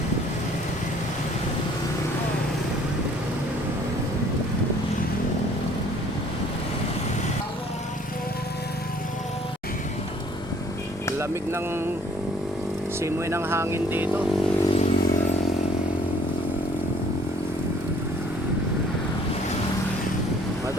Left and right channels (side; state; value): both; normal; correlation 0.57